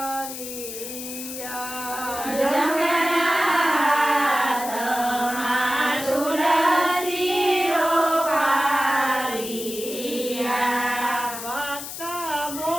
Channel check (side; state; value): left; noise; hiss, 9 dB below the sound